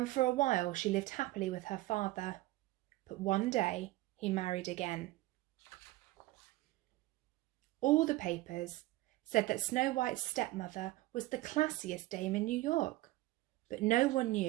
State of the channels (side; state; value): left; quieter; 18.3 dB